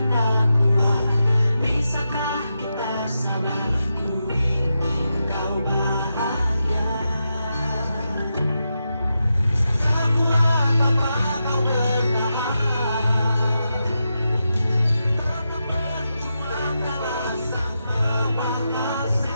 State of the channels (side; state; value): both; inverted; correlation -0.88